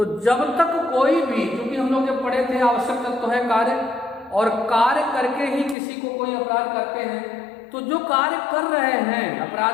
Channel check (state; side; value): drops out; right; at 5.8 s